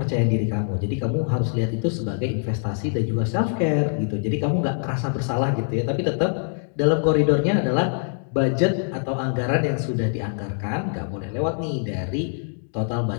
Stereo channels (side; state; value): right; silent; 61 dB below the other